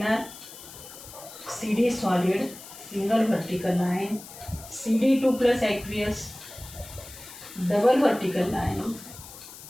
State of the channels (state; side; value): noise; left; hiss, 16 dB below the sound